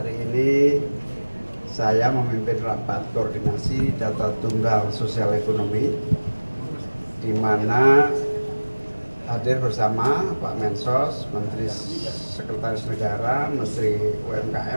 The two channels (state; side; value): inverted; both; correlation -1.00